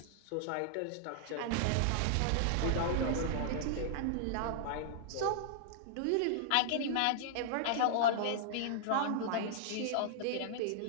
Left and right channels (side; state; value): both; different; correlation -0.01